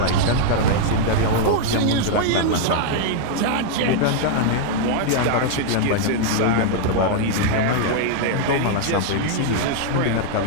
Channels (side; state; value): both; different; correlation -0.01